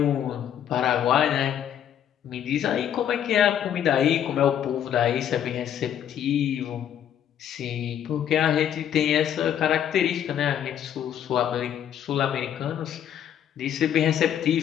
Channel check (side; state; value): right; quieter; 9.8 dB